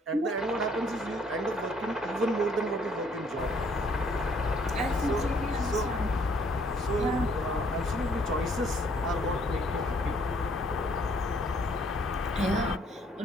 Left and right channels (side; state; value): both; normal; correlation 0.64